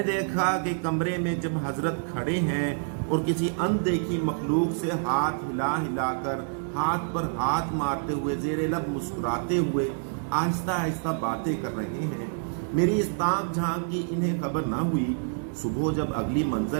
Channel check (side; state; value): left; silent; digital silence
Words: دیکھا کہ کمرے میں جب حضرت کھڑے ہیں اور کسی اندیکھی مخلوق سے ہاتھ ہلا ہلا کر ہاتھ پر ہاتھ مارتے ہوئے زیر لب مسکراتے ہوئے آہستہ آہستہ باتیں کر رہے ہیں۔ میری اس تاک جھانک کی انہیں خبر نہ ہوئی۔ صبح جب اگلی